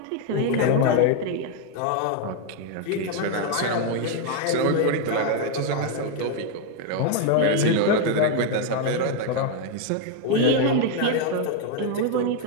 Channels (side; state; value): both; different; correlation 0.01